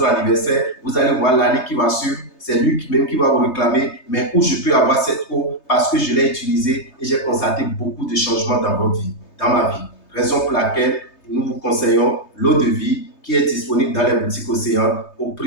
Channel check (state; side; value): late; right; 3.3 ms